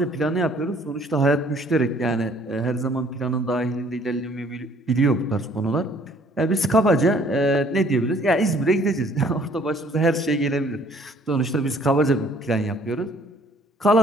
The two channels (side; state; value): both; normal; correlation 0.59